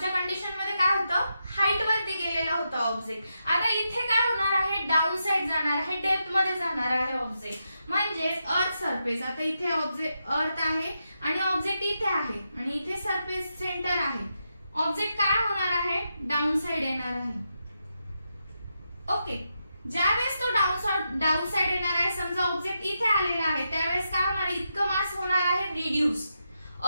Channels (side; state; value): both; inverted; correlation -0.85